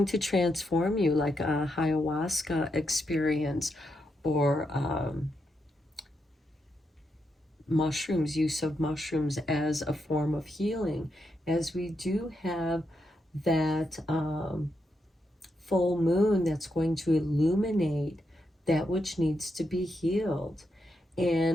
to transform you, like a ayahuasca experience, or mushrooms, use of mushrooms as a form of healing, as we do have that full moon that's going to illuminate that which needs to be healed,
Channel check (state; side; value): normal; both; correlation 0.83